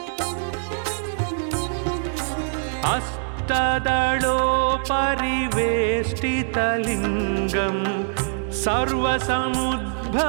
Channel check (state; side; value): silent; left; digital silence